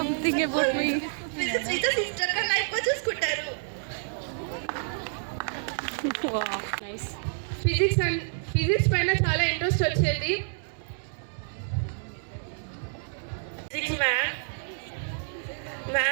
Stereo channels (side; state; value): left; silent; digital silence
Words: about me. Physics teacher sister ka life ko చూసుకుంటారు. Wow, nice. Physics పైన చాలా ఇంట్రెస్ట్ వచ్చేది. Physics